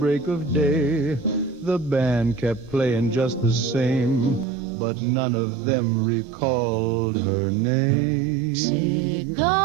of day. The band kept playing just the same, but none of them recalled her name.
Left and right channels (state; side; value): drops out; left; at 4.5 s